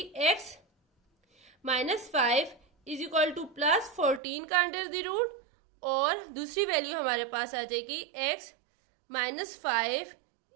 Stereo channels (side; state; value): left; drops out; at 4.2 s